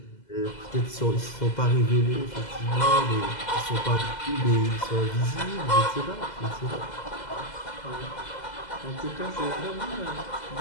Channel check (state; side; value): late; right; 2.0 ms